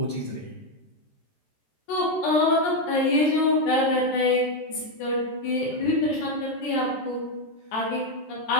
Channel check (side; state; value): right; late; 14 ms